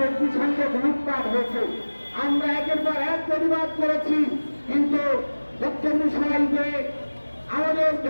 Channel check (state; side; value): inverted; both; correlation -1.00